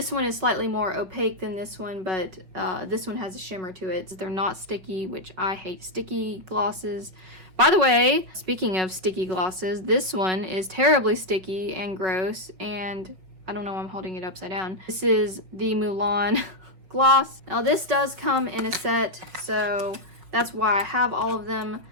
one is slightly more opaque than this one, but this one has a shimmer to it. They're not sticky, which I hate sticky glosses. By the way, speaking of sticky glosses, this one is terribly sticky and gross, and I don't know why I'm holding it upside down. This is the Mulan gloss. Now this does come in a set, so that's why I have all of them.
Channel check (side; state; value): left; late; 5.7 ms